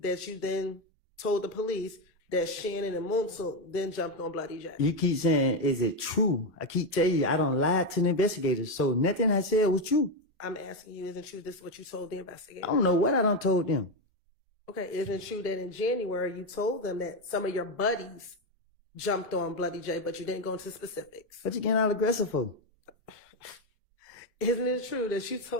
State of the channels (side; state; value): both; normal; correlation 0.08